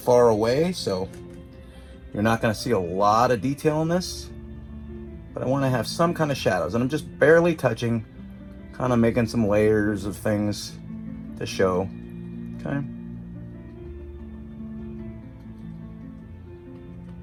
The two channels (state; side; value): identical; both; correlation 1.00